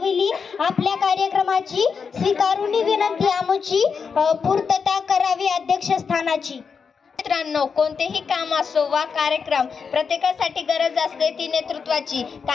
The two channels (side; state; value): right; quieter; 5.8 dB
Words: आपल्या कार्यक्रमाची, स्वीकारून विनंती आमची पूर्तता करावी अध्यक्षस्थानाची. मित्रांनो, कोणतेही काम असो वा कार्यक्रम, प्रत्येकासाठी गरज असते ती नेतृत्वाची.